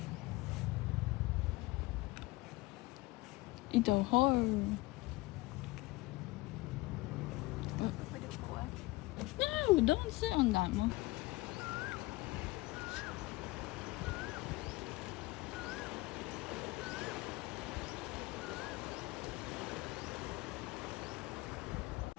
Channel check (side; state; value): right; quieter; 21.2 dB